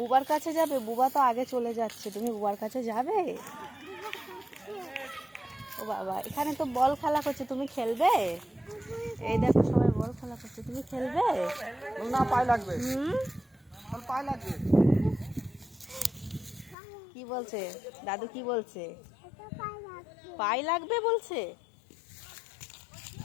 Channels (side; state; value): right; drops out; at 16.8 s